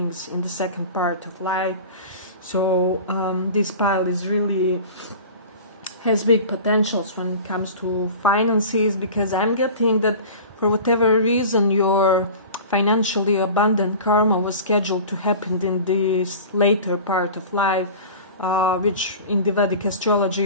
in the second part of life. So this pile is really has big potentials when it comes to finances, because I'm getting that for whatever reason your financially abundant karma was scheduled to happen in this later part of life, which in the Vedic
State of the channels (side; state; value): both; inverted; correlation -0.37